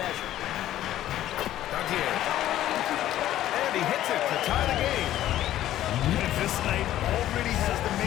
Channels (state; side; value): quieter; right; 13.1 dB